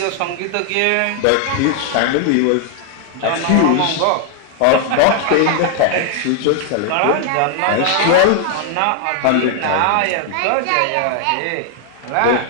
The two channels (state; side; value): different; both; correlation 0.00